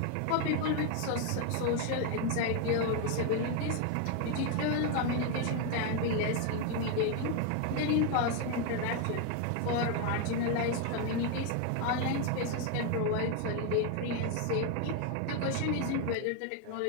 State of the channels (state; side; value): different; both; correlation 0.01